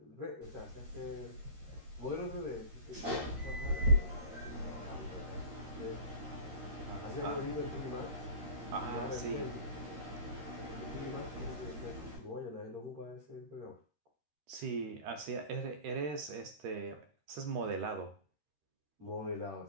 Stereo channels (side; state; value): left; late; 13 ms